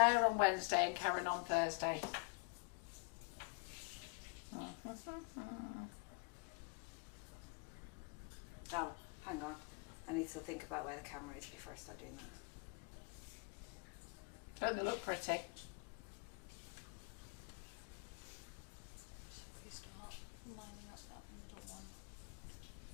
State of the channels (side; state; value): right; quieter; 34.5 dB